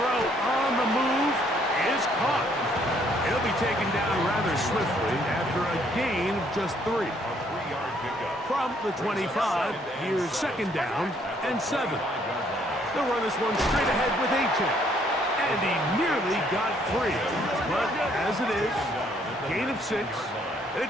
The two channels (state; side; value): normal; both; correlation 0.66